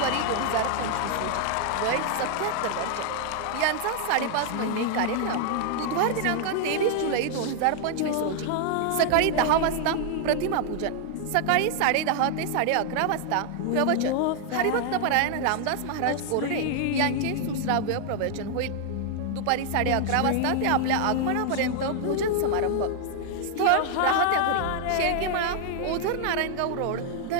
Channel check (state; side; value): different; both; correlation 0.00